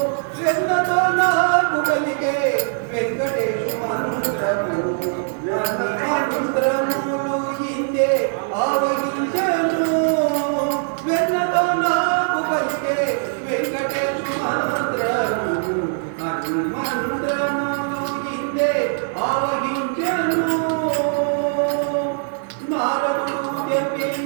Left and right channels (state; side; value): silent; left; 65 dB below the other